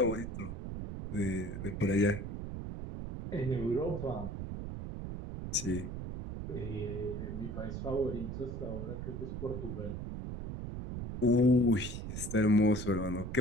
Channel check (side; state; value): right; noise; rumble, 6 dB below the sound